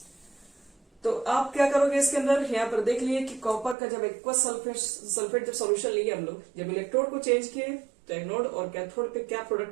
तो आप क्या करोगे इसके अंदर, यहाँ पर देख लिए कि कॉपर का जब एक्वस सल्फेट जब सॉल्यूशन लिए हम लोग, जब इलेक्ट्रोड को चेंज किए तो एनोड और कैथोड पे क्या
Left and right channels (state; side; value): drops out; left; at 3.8 s